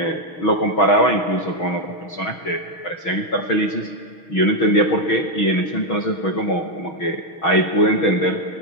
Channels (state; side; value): late; right; 6.3 ms